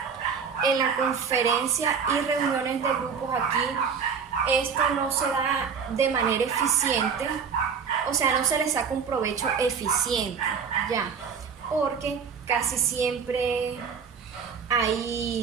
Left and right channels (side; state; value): left; quieter; 6.2 dB